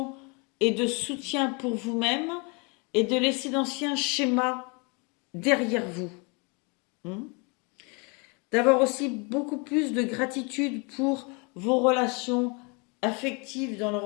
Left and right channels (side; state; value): right; quieter; 31.8 dB